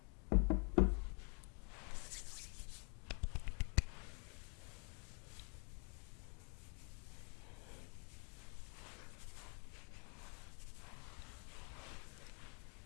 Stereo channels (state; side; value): quieter; right; 37.8 dB